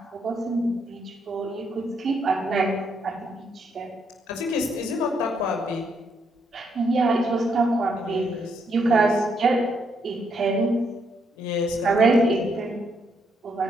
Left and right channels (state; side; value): normal; both; correlation 0.75